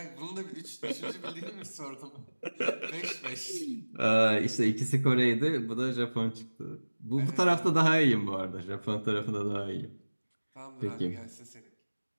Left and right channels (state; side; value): inverted; both; correlation -1.00